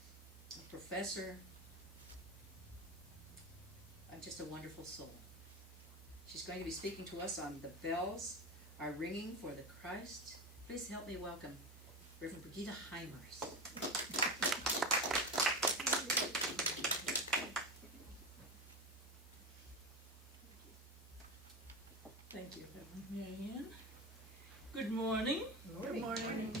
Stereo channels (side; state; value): both; normal; correlation 0.21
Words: a professor, just a wonderful soul. She's going to be speaking to us on The Bells Are Ringing for the Christ. Please help me welcome Reverend Brigitte Heimers. Thank you, Reverend Marianne. Good morning. Good morning.